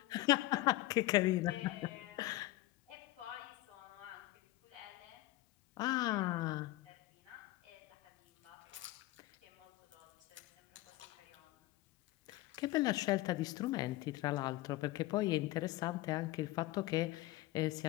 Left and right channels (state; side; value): quieter; right; 17.8 dB